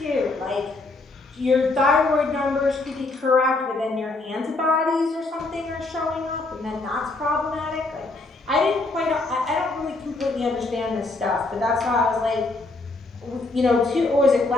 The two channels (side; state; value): right; quieter; 3.2 dB